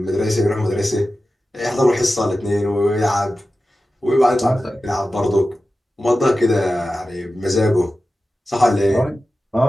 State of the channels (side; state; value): both; normal; correlation 0.94